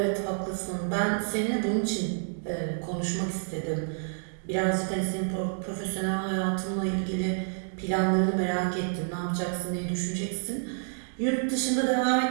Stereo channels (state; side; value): silent; left; digital silence